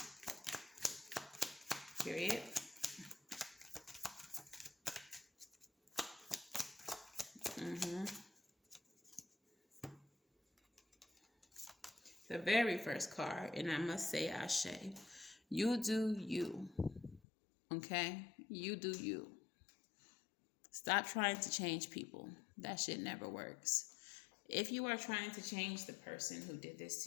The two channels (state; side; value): drops out; right; at 17.2 s